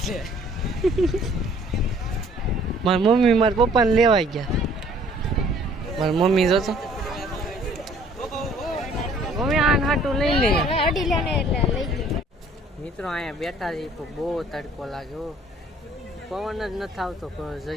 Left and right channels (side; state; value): both; normal; correlation 0.57